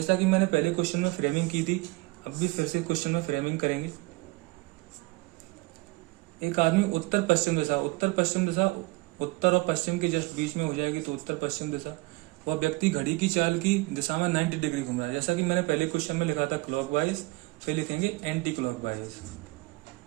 कि मैंने पहले क्वेश्चन में फ्रेमिंग की थी, अब भी फिर से क्वेश्चन में फ्रेमिंग करेंगे। एक आदमी उत्तर पश्चिम दिशा, उत्तर और पश्चिम के जस्ट बीच में हो जाएगी, तो उत्तर पश्चिम दिशा। वह व्यक्ति घड़ी की चाल की दिशा में 90 डिग्री घूम रहा है। जैसा कि मैंने पहले क्वेश्चन में लिखा था क्लॉकवाइज, फिर लिखेंगे एंटी क्लॉकवाइज।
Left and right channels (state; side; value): quieter; left; 22.7 dB